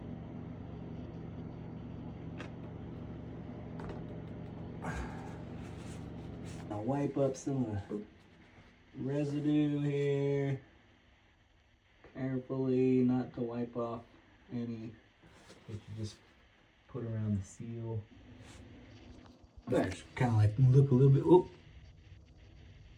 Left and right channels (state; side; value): identical; both; correlation 1.00